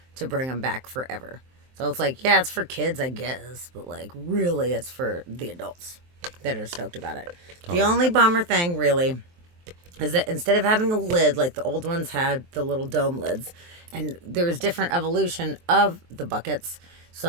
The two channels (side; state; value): left; late; 23 ms